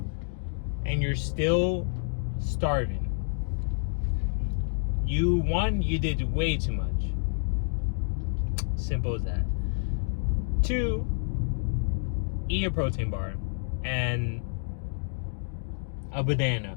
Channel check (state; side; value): silent; right; digital silence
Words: and you're still starving. You did way too much. Simple as that. 2, eat a protein bar and a banana.